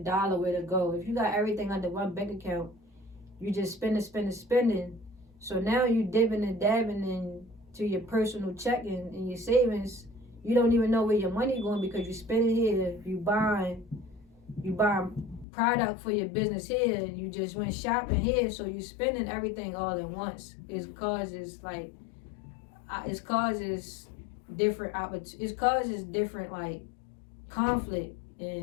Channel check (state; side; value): drops out; right; at 15.5 s